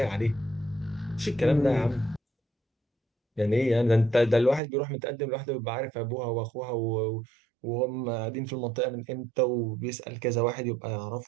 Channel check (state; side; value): drops out; left; at 4.6 s